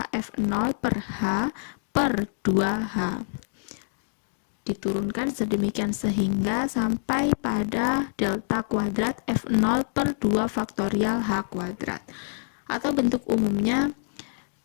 F0 per H per 2H. Diturunkan sedemikian sehingga sampai pada delta kuadrat F0 per 2 faktorial H kuadrat. Atau bentuk umumnya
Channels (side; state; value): right; silent; digital silence